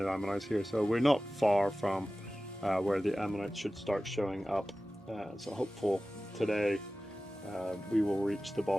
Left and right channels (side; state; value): both; normal; correlation 0.96